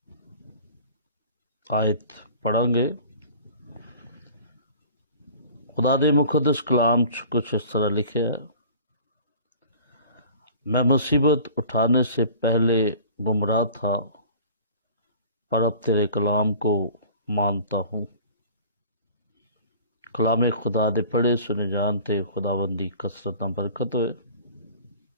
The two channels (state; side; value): inverted; both; correlation -0.45